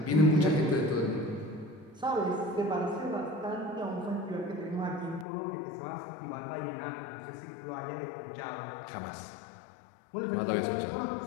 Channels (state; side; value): drops out; right; at 5.2 s